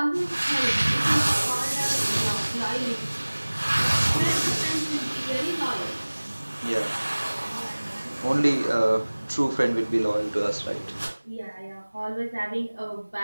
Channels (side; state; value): both; inverted; correlation -1.00